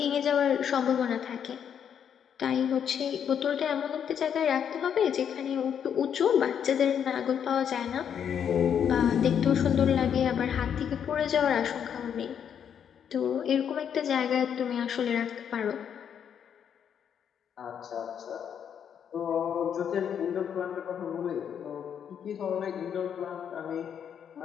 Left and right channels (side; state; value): right; quieter; 8.3 dB